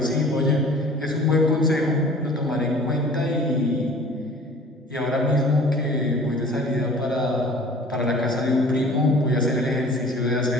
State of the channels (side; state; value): both; normal; correlation 0.47